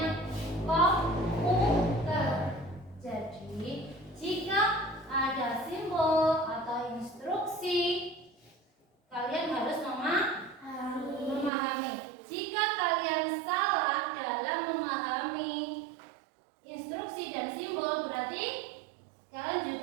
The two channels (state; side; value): drops out; left; at 11.5 s